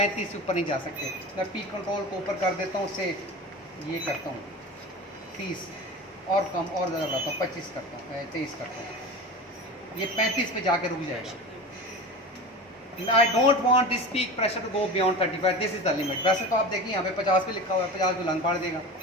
से ऊपर नहीं जा सकते। मैं पी कंट्रोल को ऊपर कर देता हूँ, उससे ये करता हूँ 30 और कम और ज़्यादा बढ़ाता हूँ, 25 करता हूँ, 23 करता हूँ, ये 35 पे जाके रुक जाएगा। I don't want this peak pressure to go beyond 35. This is the limit. वैसे तो आप देखिए यहाँ पे 50 पे लिखा हुआ है, 50 को लंग फाड़ देगा।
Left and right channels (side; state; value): both; normal; correlation 0.31